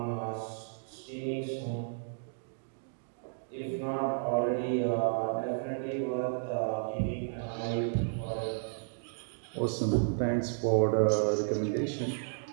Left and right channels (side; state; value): left; silent; digital silence